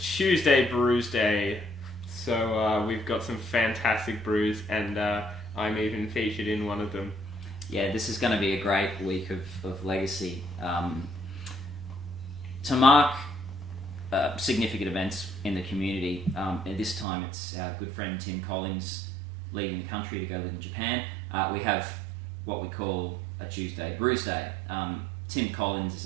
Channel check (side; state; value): left; drops out; at 17.1 s